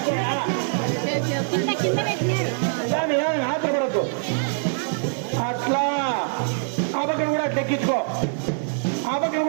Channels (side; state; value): left; silent; 63 dB below the other